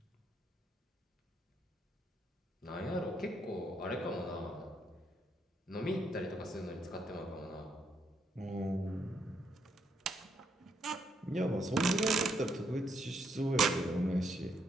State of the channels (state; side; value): normal; both; correlation 0.75